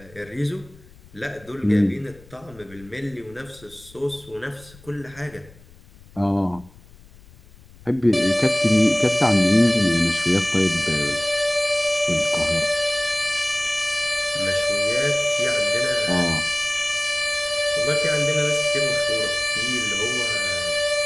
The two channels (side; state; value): left; noise; rumble, 24 dB below the sound